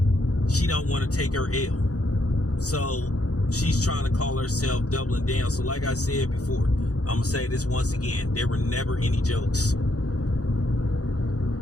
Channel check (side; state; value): right; late; 0.67 ms